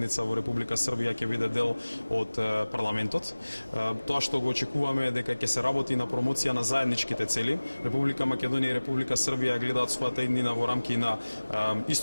во Република Србија ќе биде дел од парламентот. Тоа што го очекуваме е дека ќе се работи на промоција на заедничките цели. Република Македонија и Република Србија гледаат својата иднина во рамки на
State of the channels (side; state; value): both; inverted; correlation -1.00